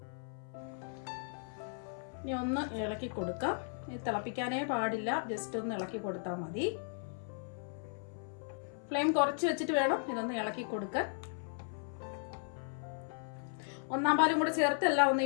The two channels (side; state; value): right; silent; 54 dB below the other